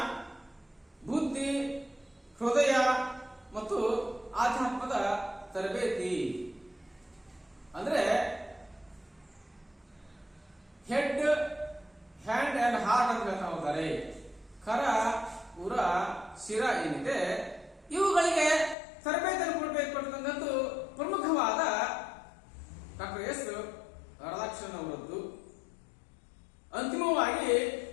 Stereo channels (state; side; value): drops out; right; at 18.8 s